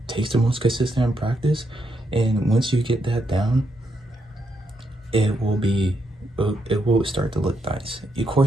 takes the most consistent in practice, and once you get that down, it will start to look nice. Of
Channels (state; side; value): normal; both; correlation 0.79